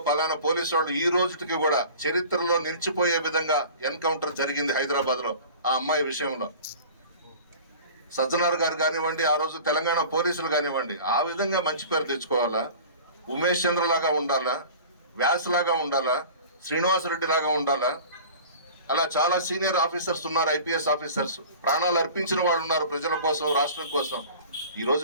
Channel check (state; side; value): inverted; both; correlation -0.41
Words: పలానా పోలీసు వాళ్ళు ఈ రోజుకి కూడా చరిత్రలో నిలిచిపోయే విధంగా ఎన్కౌంటర్ జరిగింది హైదరాబాద్ లో ఆ అమ్మాయి విషయంలో. సజ్జనార్ గారు కానివ్వండి, ఆ రోజు తెలంగాణ పోలీసులు కానివ్వండి, ఆ విధంగా మంచి పేరు తెచ్చుకోవాలా. ఉమేష్ చంద్ర లాగా ఉండాలా, వ్యాస్ లాగా ఉండాలా, శ్రీనివాసరెడ్డి లాగా ఉండాలా. అలా చాలా సీనియర్ ఆఫీసర్స్ ఉన్నారు, ఐపీఎస్ ఆఫీసర్స్, ప్రాణాలు అర్పించిన వాళ్ళు ఉన్నారు ప్రజల కోసం, రాష్ట్రం కోసం. ఈ రోజు